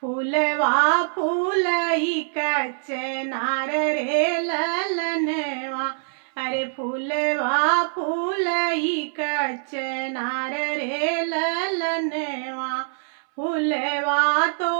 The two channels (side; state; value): left; silent; 61 dB below the other